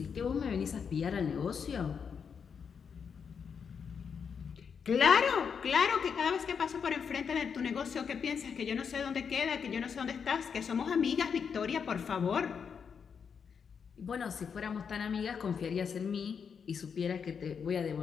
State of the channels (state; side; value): quieter; right; 6.6 dB